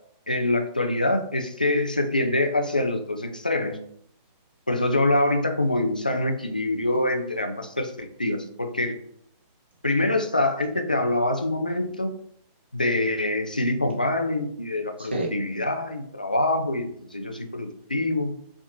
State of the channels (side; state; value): both; inverted; correlation -0.67